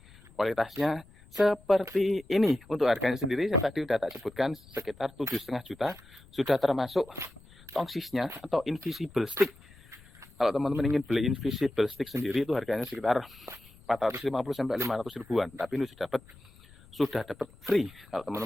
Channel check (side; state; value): left; noise; rumble, 24 dB below the sound